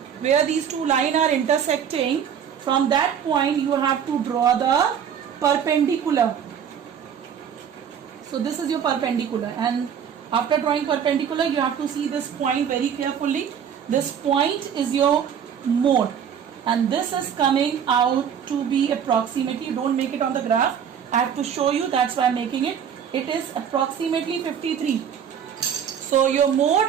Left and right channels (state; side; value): quieter; left; 8.2 dB